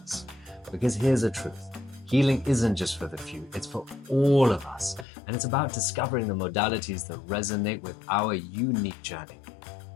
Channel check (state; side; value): drops out; right; at 5.1 s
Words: Because here's the truth. Healing isn't just for the few, it's for all of us. And it's about discovering the modalities that resonate with our unique journey.